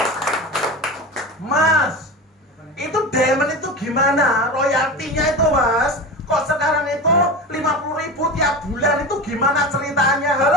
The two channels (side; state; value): both; normal; correlation 0.28